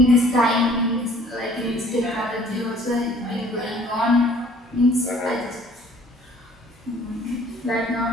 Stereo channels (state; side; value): normal; both; correlation 0.55